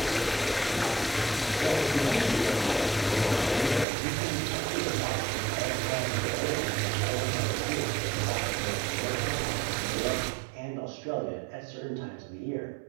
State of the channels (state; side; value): drops out; left; at 3.9 s